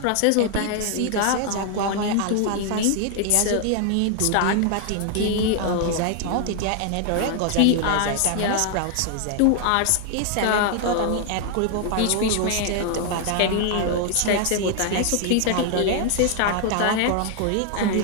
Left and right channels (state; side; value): different; both; correlation 0.00